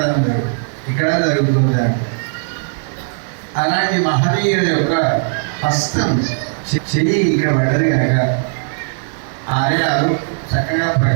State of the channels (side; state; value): left; silent; digital silence